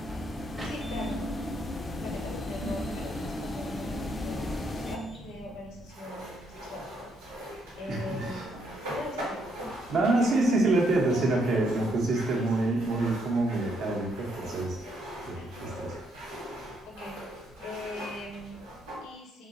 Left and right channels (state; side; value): normal; both; correlation 0.74